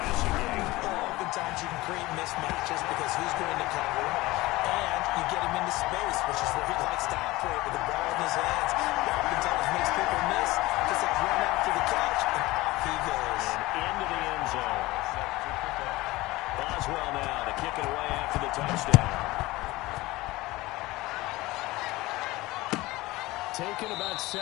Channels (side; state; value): right; quieter; 19.7 dB